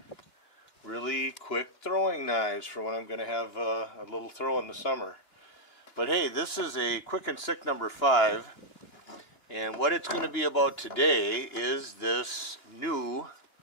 really quick throwing knives for when I'm going to have a little throw in the summer. But hey, this is a Quick and Sick number 5. And what it's going to be about today is this new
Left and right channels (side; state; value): right; late; 2.8 ms